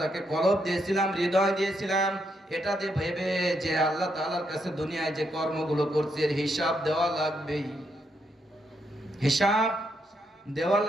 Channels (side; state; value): both; normal; correlation 0.78